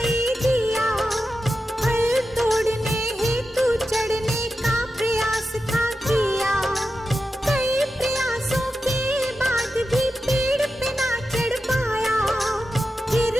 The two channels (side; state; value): both; normal; correlation 0.91